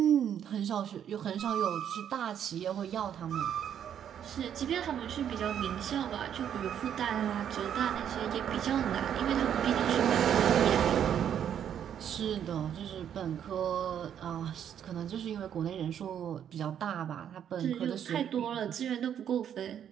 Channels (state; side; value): quieter; left; 9.3 dB